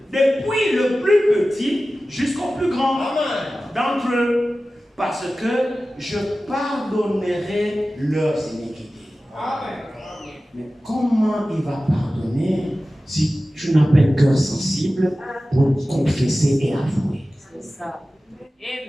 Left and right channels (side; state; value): both; normal; correlation 0.95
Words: Depuis le plus petit jusqu'au plus grand Amen. d'entre eux, parce que je pardonnerai leurs iniquités. Amen. Mais comment il va pardonner si tu n'as pas un cœur sensible pour confesser et avouer? C'est ça.